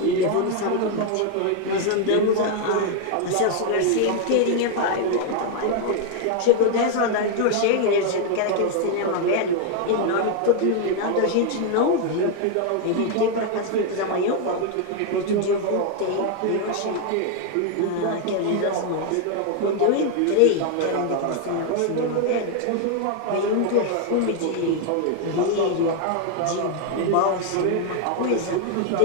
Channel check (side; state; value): both; different; correlation 0.00